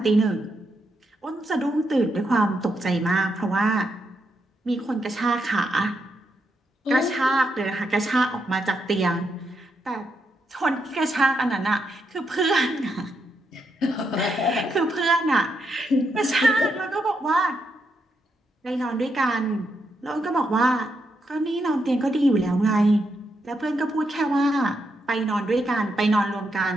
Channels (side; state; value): both; normal; correlation 0.81